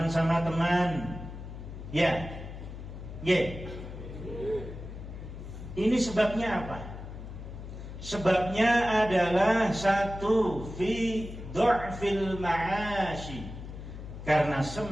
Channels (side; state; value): left; noise; hum, 11 dB below the sound